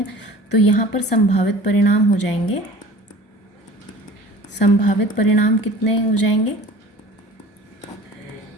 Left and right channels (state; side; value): normal; both; correlation 0.43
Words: तो यहाँ पर संभावित परिणाम हो जाएंगे, संभावित परिणाम कितने हो जाएंगे?